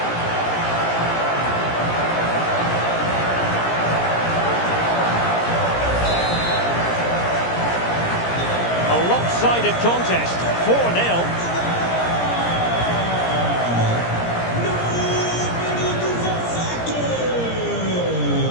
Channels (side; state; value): right; late; 17 ms